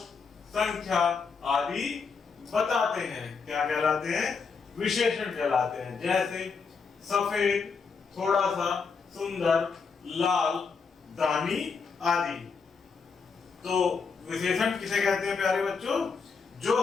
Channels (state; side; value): quieter; right; 5.3 dB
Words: संख्या आदि बताते हैं। क्या कहलाते हैं? विशेषण कहलाते हैं। जैसे सफेद, थोड़ा सा, सुंदर, लाल, दानी आदि। तो विशेषण किसे कहते हैं प्यारे बच्चों? जो